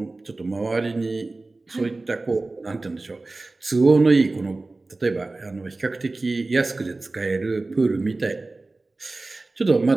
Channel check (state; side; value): quieter; left; 3.3 dB